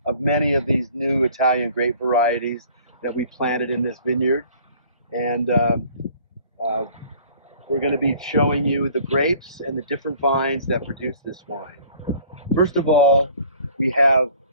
of many of these new Italian grape varieties that we planted in this vineyard. And we're going to be showing you the grapes and the different vines that produce this wine. First of all, we have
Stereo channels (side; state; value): both; inverted; correlation -0.53